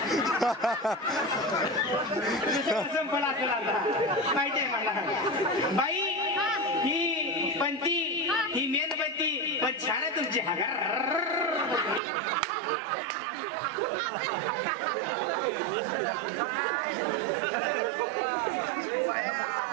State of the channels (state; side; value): drops out; left; at 12.0 s